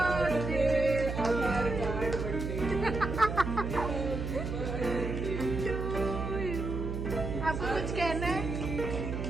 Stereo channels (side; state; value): right; noise; hum, 4 dB below the sound